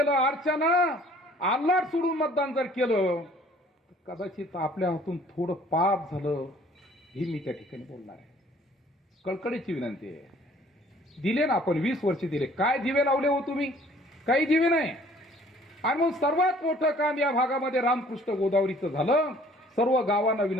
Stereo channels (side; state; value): both; normal; correlation 0.55